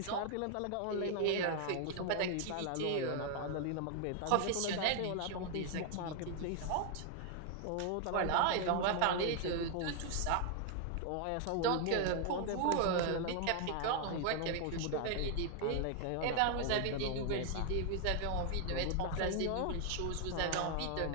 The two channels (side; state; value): both; different; correlation 0.00